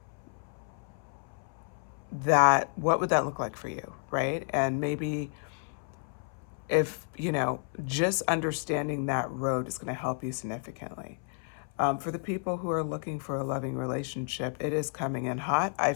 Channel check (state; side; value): silent; right; 57 dB below the other